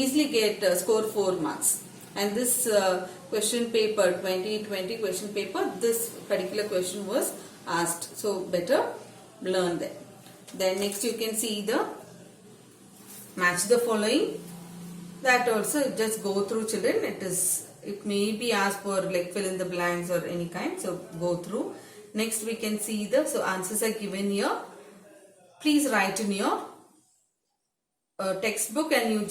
get score 4 marks. And this question paper, 2020 question paper, this particular question was asked. So better learn that. Then next you can see the match the following. That also just go through, children. It may be asked for like fill in the blanks or any kind. So go through. Next we can see so answers are given here. Please write in your textbook, and you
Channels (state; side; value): identical; both; correlation 1.00